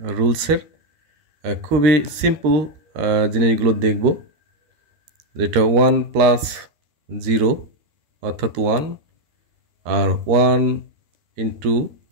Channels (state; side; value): late; left; 13 ms